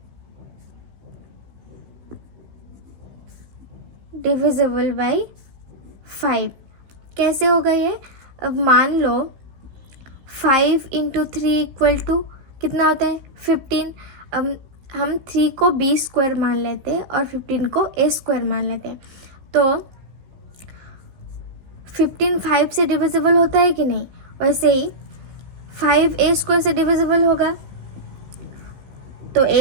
डिविजिबल बाई 5। कैसे होगा ये, अब मान लो 5 इंटू 3 इक्वल टू कितना होता है 15। अब हम 3 को b स्क्वायर मान लेते हैं और 15 को a स्क्वायर मान लेते हैं। तो 15 5 से डिविजिबल होता है कि नहीं, वैसे ही 5 a स्क्वायर से डिविजिबल होगा। तो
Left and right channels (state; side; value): late; left; 16 ms